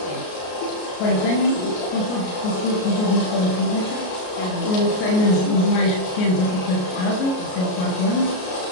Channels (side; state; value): right; late; 33 ms